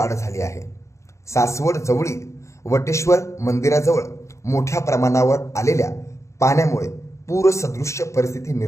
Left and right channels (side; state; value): right; late; 0.14 ms